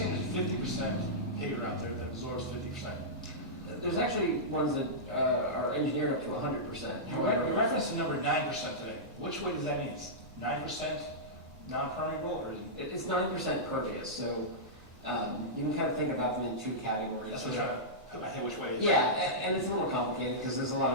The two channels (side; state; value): both; normal; correlation -0.14